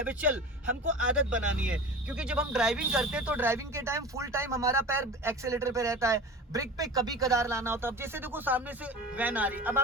हमको आदत बनानी है। क्योंकि जब हम ड्राइविंग करते हैं तो ड्राइविंग के टाइम फुल टाइम हमारा पैर एक्सीलेटर पे रहता है, ब्रेक पे कभी कदार लाना होता है। अब जैसे देखो सामने से वैन आ रही, अब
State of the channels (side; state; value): both; normal; correlation 0.34